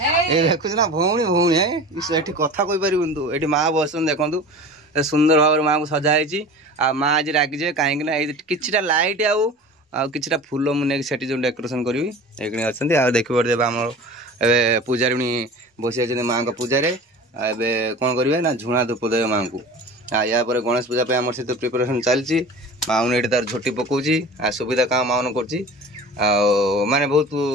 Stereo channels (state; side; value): normal; both; correlation 0.37